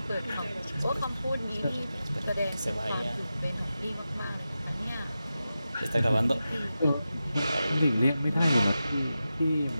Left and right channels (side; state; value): both; inverted; correlation -0.92